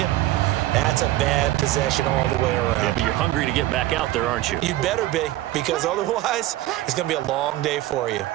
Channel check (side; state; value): left; quieter; 15.7 dB